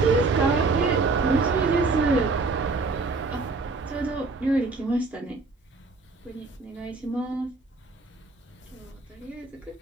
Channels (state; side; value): quieter; left; 3.8 dB